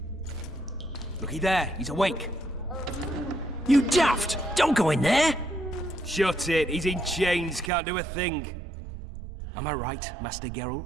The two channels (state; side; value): drops out; left; at 7.7 s